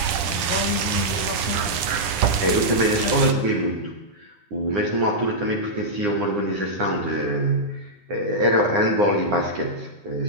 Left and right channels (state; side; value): late; left; 10 ms